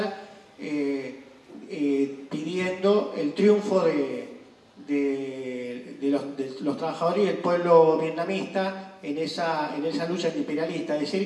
pidiendo el triunfo de los trabajadores y el pueblo vietnamita en esa lucha antiimperialista. Es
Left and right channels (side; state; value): both; identical; correlation 1.00